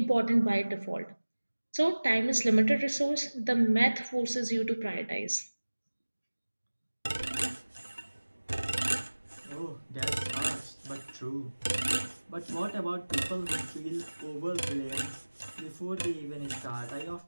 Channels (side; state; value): both; inverted; correlation -1.00